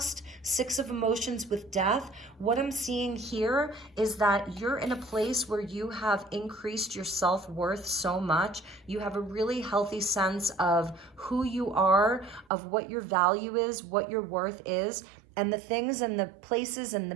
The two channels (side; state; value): left; drops out; at 12.5 s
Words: Six of Emotions with death, what I'm seeing here is that you're in a place where you have increased your self-worth so much. You have a really healthy sense of who you are, of what your value is, what your worth is. And the things and the places and the